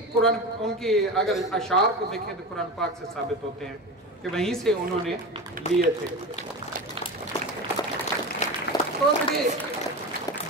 कुरान, उनके अगर अशार को देखें तो कुरान पाक से साबित होते हैं कि वहीं से उन्होंने लिए थे। तो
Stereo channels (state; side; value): normal; both; correlation 0.26